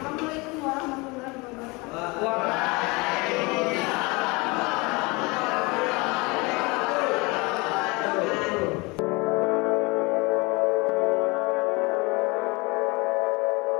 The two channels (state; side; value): quieter; right; 26.3 dB